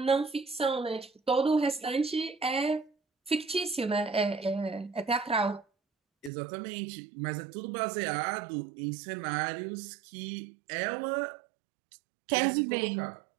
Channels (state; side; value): drops out; left; at 6.3 s